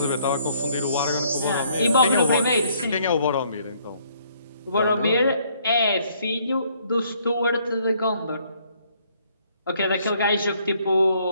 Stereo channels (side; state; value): both; inverted; correlation -0.66